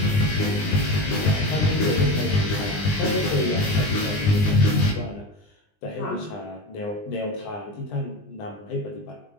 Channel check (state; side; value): late; right; 20 ms